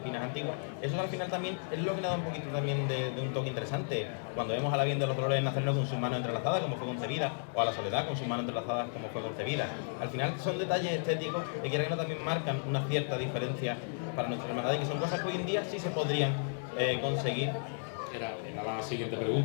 antigua. Eso al final también es lo que le da un poquito también de un toque interesante. Cuando vemos a la Virgen de los Dolores Nazareno con sus manos entrelazadas, como fue concebida, o a la Soledad con sus manos entrelazadas, como fue concebida. Al final son detalles estéticos que quiera que no también marcan una cierta diferencia para nuestra hermandad y que son cosas que hoy en día sí se podrían conseguir. Era la siguiente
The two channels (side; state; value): right; silent; digital silence